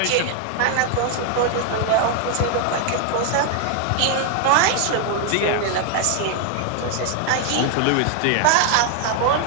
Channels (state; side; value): different; both; correlation 0.00